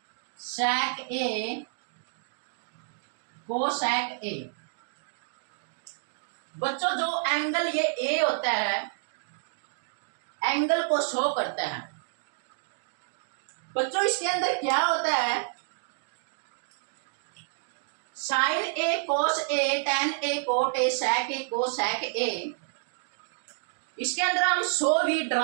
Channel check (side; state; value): left; silent; digital silence